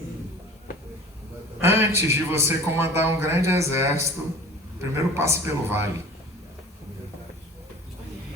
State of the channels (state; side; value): normal; both; correlation 0.42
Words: Antes de você comandar um grande exército, primeiro passe pelo vale.